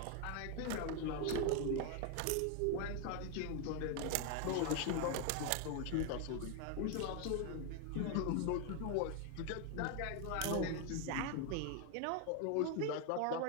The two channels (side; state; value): both; different; correlation 0.01